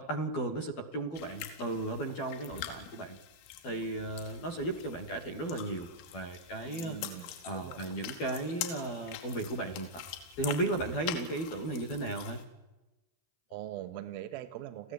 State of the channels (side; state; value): right; late; 12 ms